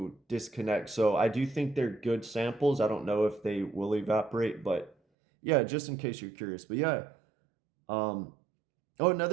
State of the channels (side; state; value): left; drops out; at 5.0 s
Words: disconnect. So I do think they're good samples. I don't know if they will evaporate, but yeah, just in case you're curious. But yeah, oh,